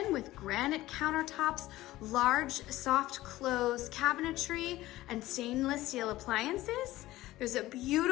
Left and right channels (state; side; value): quieter; right; 16.6 dB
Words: with granite countertops, large soft close cabinetry, and stainless steel appliances. There's a